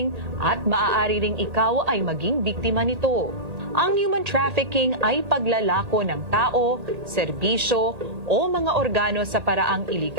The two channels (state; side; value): late; left; 1.8 ms